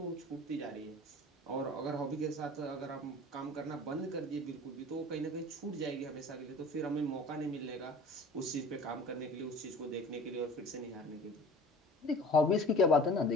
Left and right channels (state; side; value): normal; both; correlation 0.42